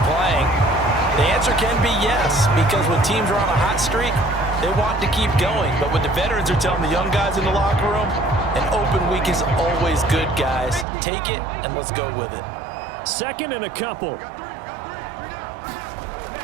playing, the answer can be yes. Because when teams are on a hot streak, they want to keep going. But what the veterans are telling the young guys in the locker room, an open week is always good, guys. Take it and let's go with it. 2nd and a couple.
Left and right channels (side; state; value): left; drops out; at 10.9 s